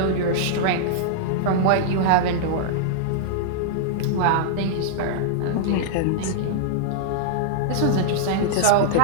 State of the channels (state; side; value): different; both; correlation -0.02